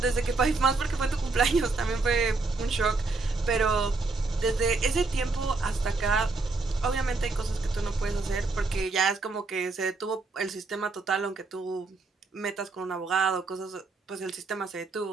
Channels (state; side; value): quieter; left; 3.7 dB